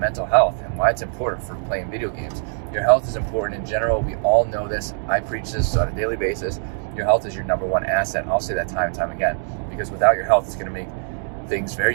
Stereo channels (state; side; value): silent; left; digital silence